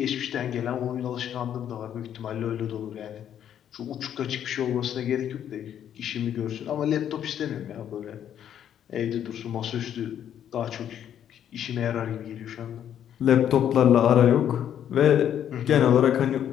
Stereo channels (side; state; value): right; quieter; 9.8 dB